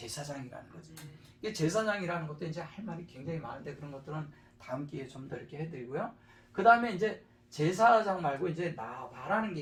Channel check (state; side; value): identical; both; correlation 1.00